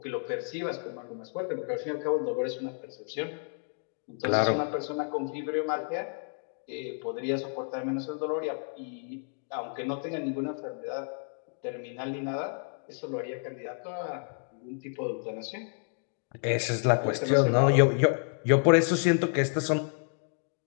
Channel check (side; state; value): right; silent; 58 dB below the other